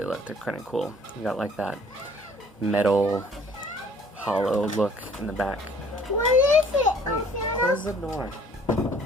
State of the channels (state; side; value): normal; both; correlation 0.55